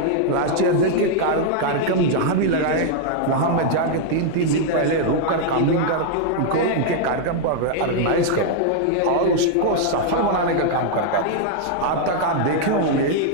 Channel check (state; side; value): different; both; correlation -0.01